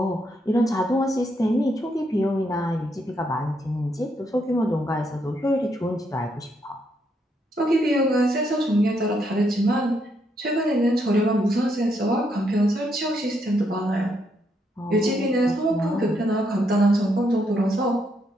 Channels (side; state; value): both; normal; correlation 0.76